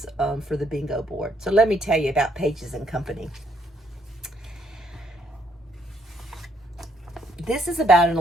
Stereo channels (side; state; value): both; normal; correlation 0.70